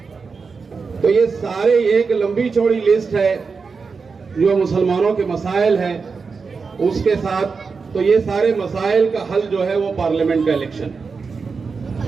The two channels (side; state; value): left; quieter; 5.0 dB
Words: तो ये सारे एक लंबी चौड़ी लिस्ट है जो मुसलमानों के मसाइल हैं उसके साथ। तो ये सारे मसाइल का हल जो है वो पार्लियामेंट का इलेक्शन,